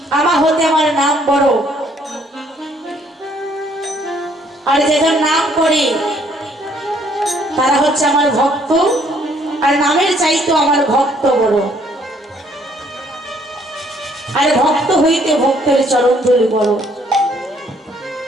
আমার হতে আমার নাম বড়, আর যেজন নাম করে তারা হচ্ছে আমার ভক্ত, আর নামের চাইতো আমার ভক্ত বড়, আর ভক্ত হইতে ভক্তের চরণ ধুলি বড়।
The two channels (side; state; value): both; normal; correlation 0.64